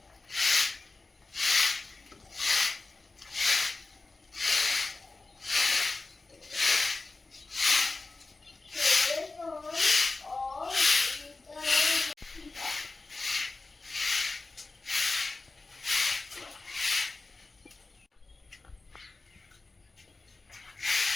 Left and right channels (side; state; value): right; quieter; 3.6 dB